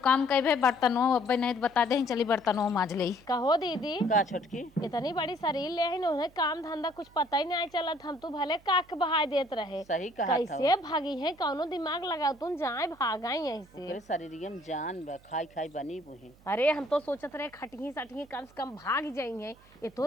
काम कहे बर्तनों अब नहीं बता दे चली बर्तनों माज ले कहो दीदी का छोटकी इतनी बड़ी शरीर ले है उन्हें काम धंधा कुछ पता ही नहीं चलत हम तो भले काक बहाय देत रहे सही कहा कैसे भागी है कौनो दिमाग लगाओ तुम जाए भागाई यहीं से तेरे शरीर में जान बा खाई खाई बनी बुही अरे हम तो सोचत रहे खटही सटही कम से कम भाग जाएंगे ये तो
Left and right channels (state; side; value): noise; right; hum, 27 dB below the sound